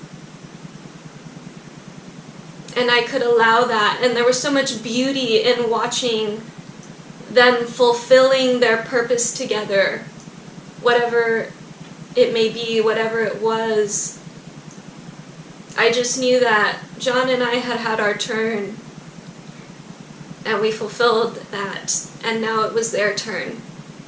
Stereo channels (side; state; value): both; identical; correlation 1.00